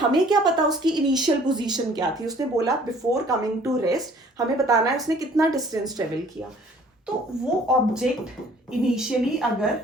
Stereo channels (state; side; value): normal; both; correlation 0.55